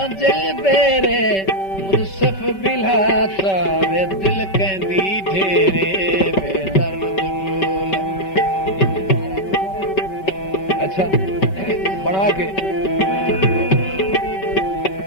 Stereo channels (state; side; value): late; right; 5.2 ms